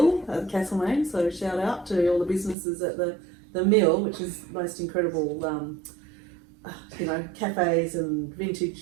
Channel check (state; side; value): drops out; left; at 2.6 s